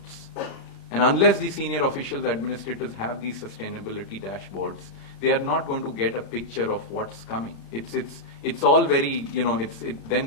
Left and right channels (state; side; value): late; right; 36 ms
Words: And unless the senior officials, administrators have these sustainability dashboards, they are not going to get a picture of what's coming. It's all very, it then